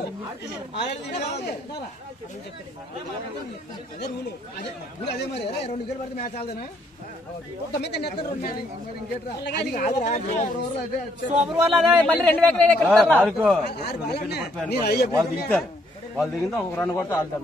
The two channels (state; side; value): normal; both; correlation 0.69